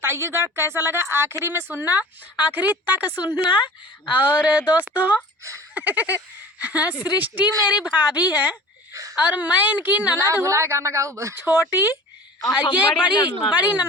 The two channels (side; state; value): both; normal; correlation 0.42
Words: कैसा लगा। आखिरी में सुनना, आखिरी तक सुनना। और दोस्तों सृष्टि मेरी भाभी है और मैं इनकी ननद हूँ छोटी। ये बड़ी